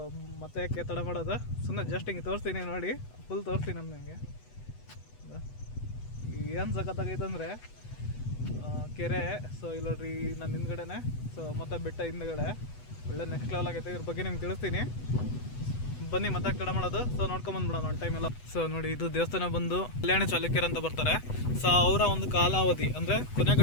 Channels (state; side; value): late; right; 8.1 ms